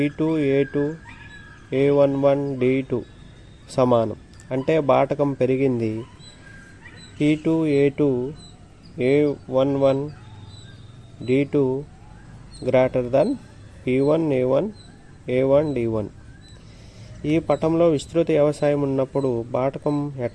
A11 D2 సమానం. అంటే బాటకం పెరిగింది. P2A2 A11 D2 greater than P1A1 A1 D1. ఈ పటంలో విస్తృత వ్యవసాయం ఉన్నప్పుడు బాటకం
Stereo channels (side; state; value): both; identical; correlation 1.00